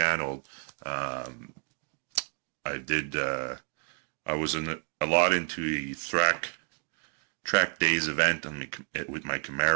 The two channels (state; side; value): quieter; left; 40.0 dB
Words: I was a lot into the track days event with my